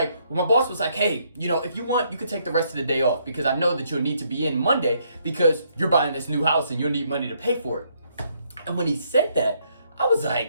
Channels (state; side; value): inverted; both; correlation -0.72